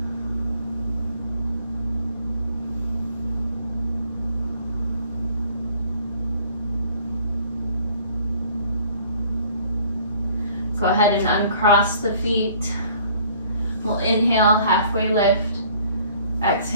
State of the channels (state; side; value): inverted; both; correlation -0.57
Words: Go ahead and uncross the feet. We'll inhale, halfway lift.